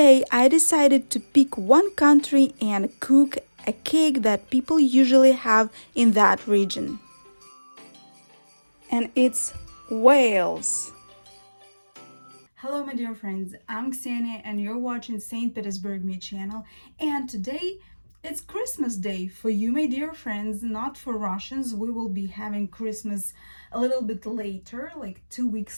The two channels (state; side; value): inverted; both; correlation -1.00